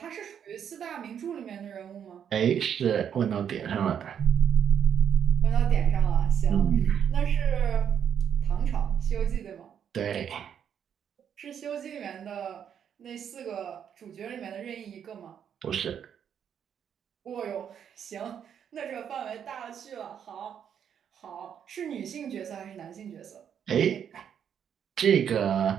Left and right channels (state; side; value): quieter; left; 8.4 dB